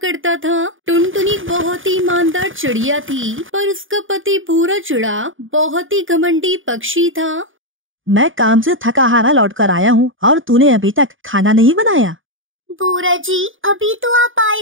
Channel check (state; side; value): late; left; 0.58 ms